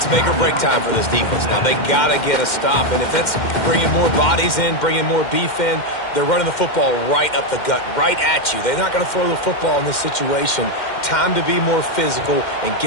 make or break time for this defense now. They got to get a stop, and if that's bringing more bodies in, bringing more beef in, they're running the football right up the gut, right at you. They're not going to throw the football in this situation. Time to be more physical and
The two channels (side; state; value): right; late; 2.1 ms